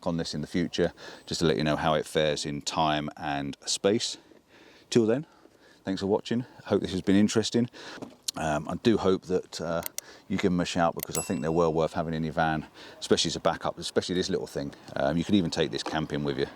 on this in the future just to let you know how it fares in time and space. Till then, thanks for watching. Hope this has been interesting. I do hope that you give them a shout, because I think they're well worth having in your van, especially as a backup, especially this little thing. You could even take this camping with you.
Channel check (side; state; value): both; identical; correlation 1.00